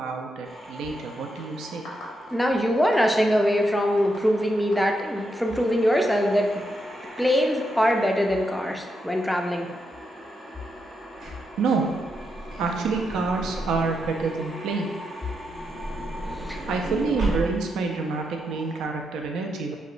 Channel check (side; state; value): both; normal; correlation 0.83